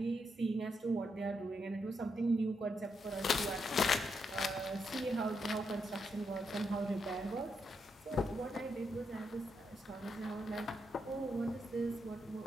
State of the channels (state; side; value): normal; both; correlation 0.81